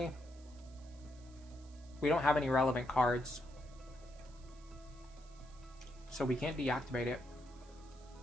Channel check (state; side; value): noise; right; hiss, 25 dB below the sound